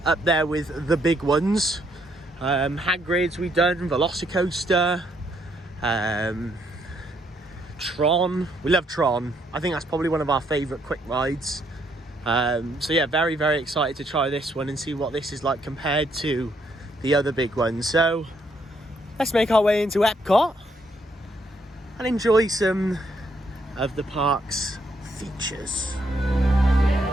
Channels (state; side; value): normal; both; correlation 0.72